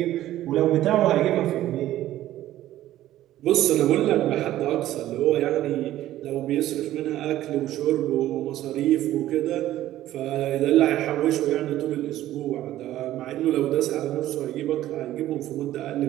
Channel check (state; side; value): quieter; left; 13.9 dB